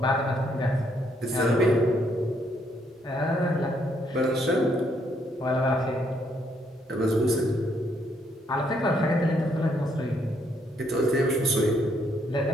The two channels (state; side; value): normal; both; correlation 0.72